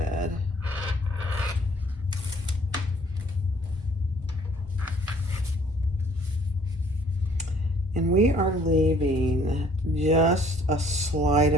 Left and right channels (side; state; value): both; normal; correlation 0.58